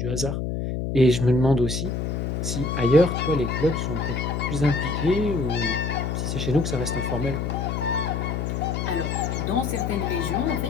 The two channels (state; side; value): noise; left; hum, 2 dB below the sound